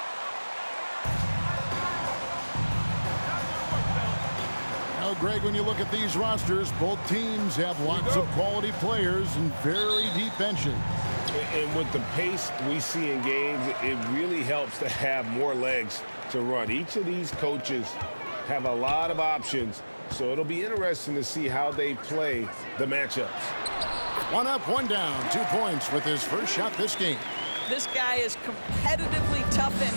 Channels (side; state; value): both; inverted; correlation -1.00